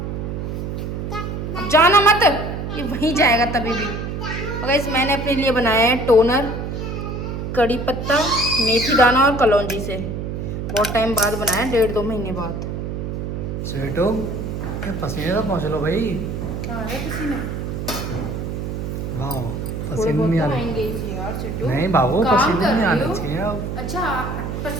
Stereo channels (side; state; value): right; noise; hum, 4 dB below the sound